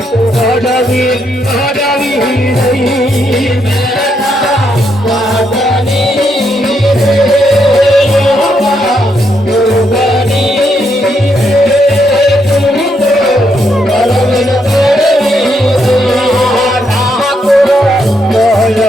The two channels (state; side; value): normal; both; correlation 0.77